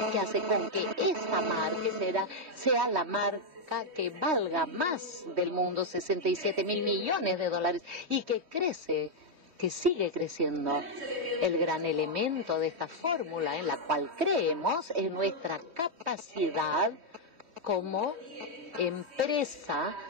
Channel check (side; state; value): left; late; 3.1 ms